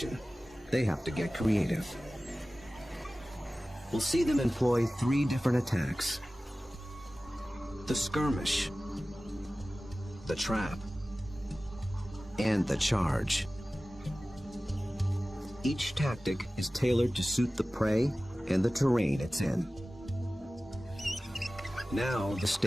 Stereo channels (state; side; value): normal; both; correlation 0.97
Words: they have to get creative. We'll see them employ 3 different attacks: the skirmish, the trap, and the charge. Each tactic is tailored to suit the prey and the terrain it's in. Now the